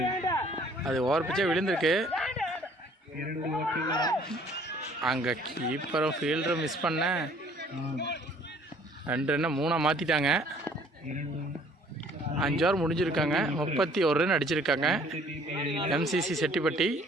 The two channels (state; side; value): normal; both; correlation 0.57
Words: அது ஓவர் பிச்சே விழுந்திருக்கு. அங்கே கீப்பரும் ஃபீல்டரும் மிஸ் பண்ண 2 ரன்னை 3 மாற்றிட்டாங்க. 5 ஓவர் முடிஞ்சிருக்காங்க. 31 ரன் அடிச்சிருக்காங்க. எம்சிசி செட்டிப்பட்டி